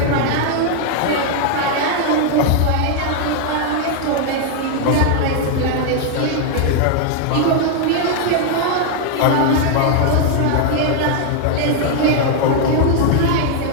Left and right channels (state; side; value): different; both; correlation 0.00